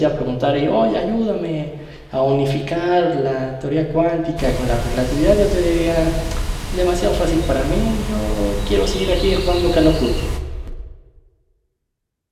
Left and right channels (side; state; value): both; identical; correlation 1.00